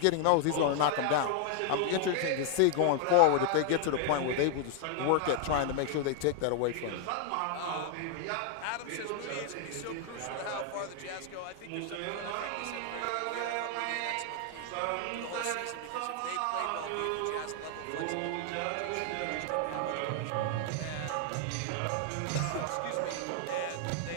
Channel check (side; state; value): both; different; correlation 0.00